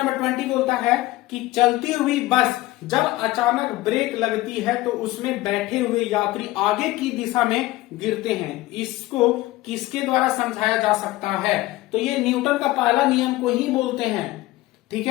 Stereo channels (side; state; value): right; quieter; 18.1 dB